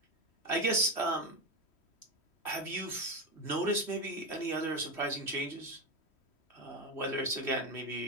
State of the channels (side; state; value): right; late; 3.1 ms